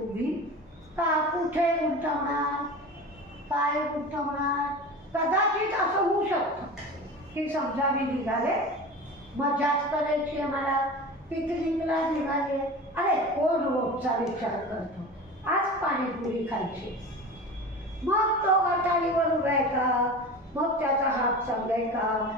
कुठे गुंतवणार, काय गुंतवणार? कदाचित असं होऊ शकतं की समजा मी निघाले, मजाच करायची आहे मला, पिकनिकला निघाले. अरे कोण रोजचा विचार करतो, आज पाणीपुरी खायची. मग तो गटारीवर उभा आहे का, मग त्याचा हात चांगलाय का,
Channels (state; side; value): normal; both; correlation 0.33